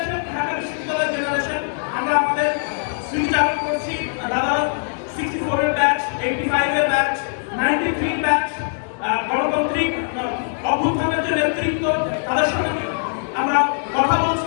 ঢাকা বিশ্ববিদ্যালয়ের জেনারেশন আমরা আমাদের স্মৃতি চালু করছি। দাদা 64 এর ব্যাচ, 85 এর ব্যাচ, 93 ব্যাচ, গণতান্ত্রিক অভ্যুত্থানের যে নেতৃত্ব তাদের সঙ্গে আমরা কথা বলছি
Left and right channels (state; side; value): silent; right; digital silence